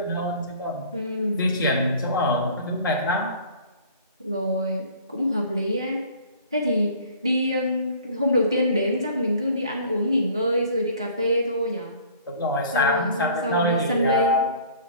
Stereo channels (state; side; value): inverted; both; correlation -0.50